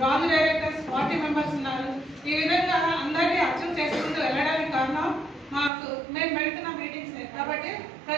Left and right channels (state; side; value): drops out; left; at 5.7 s